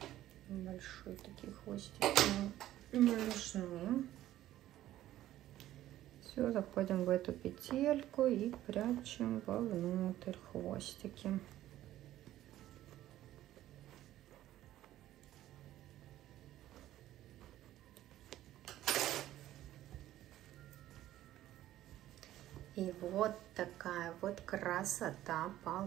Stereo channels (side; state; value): left; quieter; 13.7 dB